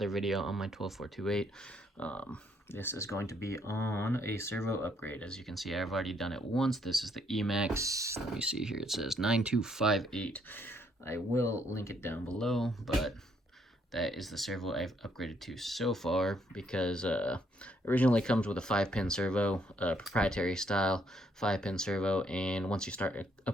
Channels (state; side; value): normal; both; correlation 0.70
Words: video on my 12428. This is going to be on a servo upgrade. As you can see, I've already done it once. This is the Emax. Let me see here. It says 9258. I will link it down below, but that is the servo I've upgraded to so far because originally comes with a 5-pin servo, proprietary style 5-pin servo, and once you start